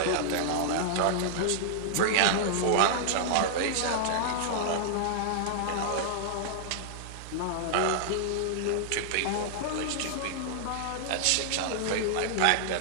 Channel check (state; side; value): different; both; correlation -0.01